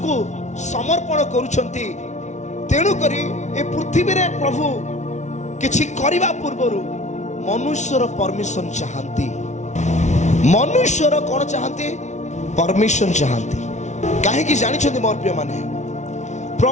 ସମର୍ପଣ କରୁଛନ୍ତି, ତେଣୁକରି ଏ ପୃଥିବୀରେ ପ୍ରଭୁ କିଛି କରିବା ପୂର୍ବରୁ ମନୁଷ୍ୟର ପରମିଶନ ଚାହାନ୍ତି। ମନୁଷ୍ୟର କଣ ଚାହାନ୍ତି? ପରମିଶନ ଚାହାନ୍ତି। କାହିଁକି ଜାଣିଛନ୍ତି ମୋର ପ୍ରିୟମାନେ?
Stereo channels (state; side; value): late; right; 0.34 ms